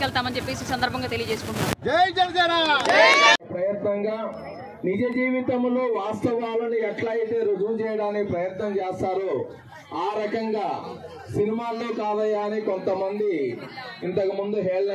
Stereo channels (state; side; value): identical; both; correlation 1.00